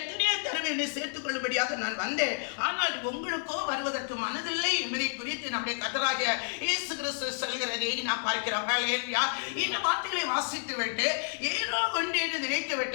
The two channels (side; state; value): right; silent; 58 dB below the other